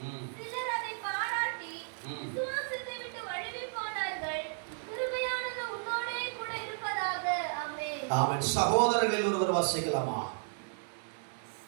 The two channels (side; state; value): left; silent; digital silence